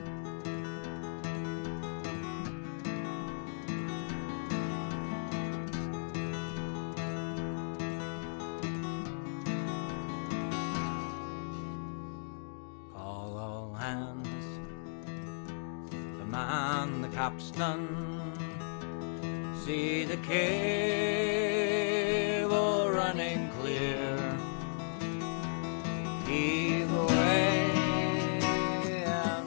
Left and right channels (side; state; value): right; silent; digital silence